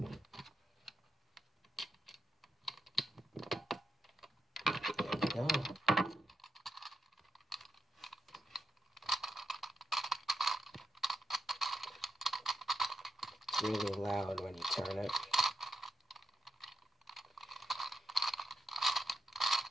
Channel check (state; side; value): normal; both; correlation 0.83